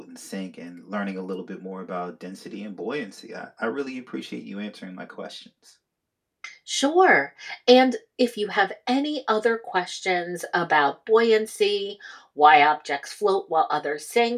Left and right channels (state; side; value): identical; both; correlation 1.00